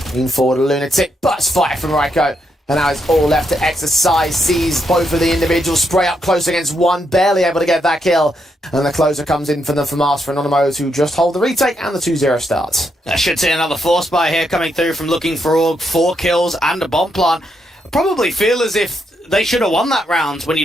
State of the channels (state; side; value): normal; both; correlation 0.80